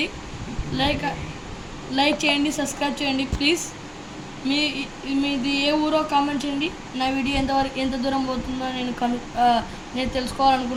లైక్ చేయండి, సబ్స్క్రైబ్ చేయండి ప్లీజ్. మీది ఏ ఊరో కామెంట్ చేయండి. నా వీడియో ఎంత దూరం పోతుందో నేను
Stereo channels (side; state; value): both; identical; correlation 1.00